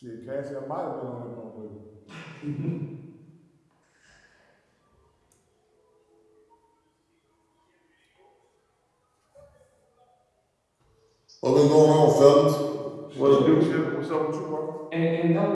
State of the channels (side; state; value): both; identical; correlation 1.00